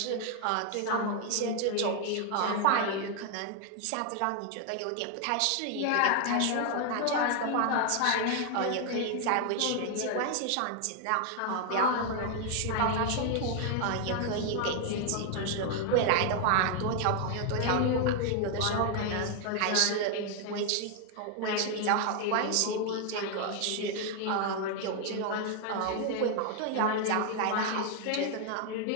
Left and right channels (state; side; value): different; both; correlation 0.00